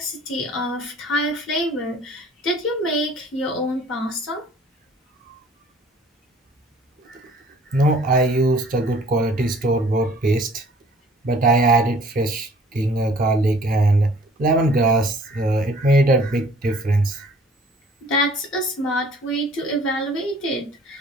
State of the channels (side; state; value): both; normal; correlation 0.54